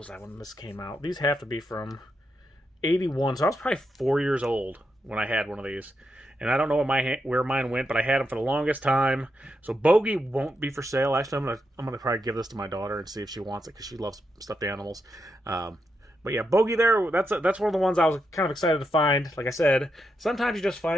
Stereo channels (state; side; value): normal; both; correlation 0.84